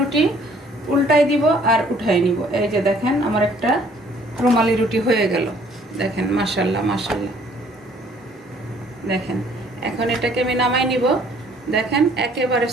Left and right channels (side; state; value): both; normal; correlation 0.60